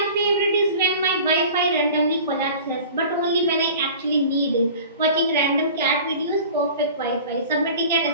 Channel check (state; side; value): inverted; both; correlation -0.41